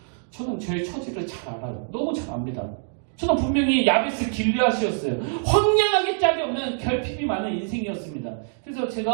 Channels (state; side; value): silent; left; digital silence